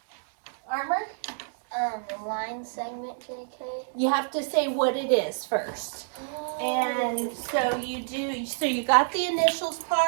JK. You have to say what it is first. And so you got the initials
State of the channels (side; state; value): left; silent; digital silence